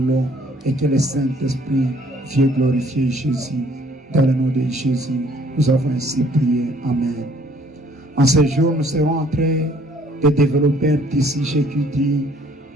et que le Saint-Esprit vienne glorifier Jésus. Dans le nom de Jésus, nous avons ainsi prié. Amen. En ce jour, nous serons en train de développer un petit sujet qui dit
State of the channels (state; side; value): normal; both; correlation 0.60